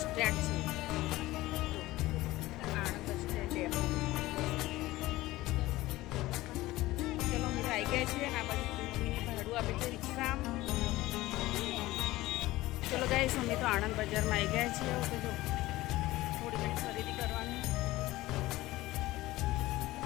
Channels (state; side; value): quieter; right; 17.9 dB